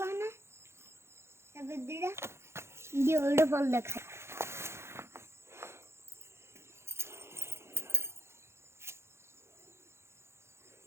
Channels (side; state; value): left; late; 0.13 ms